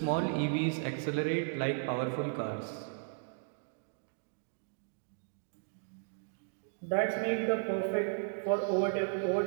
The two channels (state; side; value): silent; left; digital silence